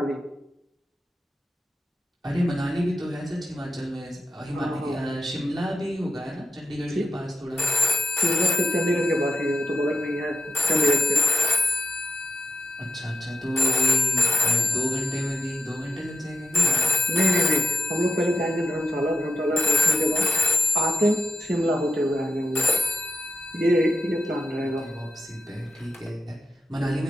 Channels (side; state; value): both; normal; correlation 0.84